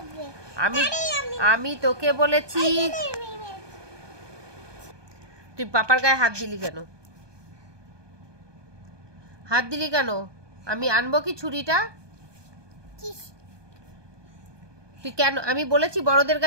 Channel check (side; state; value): left; late; 1.2 ms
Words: আমি তোকে বলেছি, তুই পাপার গায়ে হাত দিলি কেন? হাত দিলি কেন? আমি আনবো কি ছুরিটা? তুই কেন? আমি বলেছি বড়দের